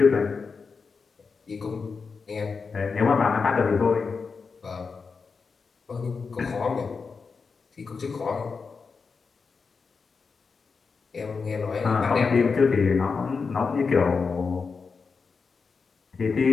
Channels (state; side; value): quieter; right; 5.0 dB